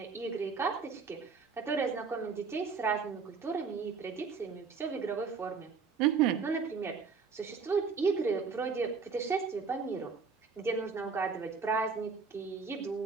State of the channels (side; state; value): left; quieter; 5.3 dB